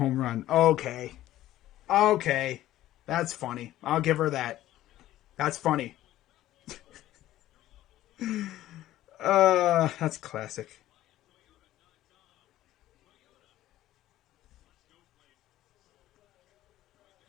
run. Okay. That's funny. I'll give her that. That's funny. That's classic.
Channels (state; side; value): quieter; right; 14.3 dB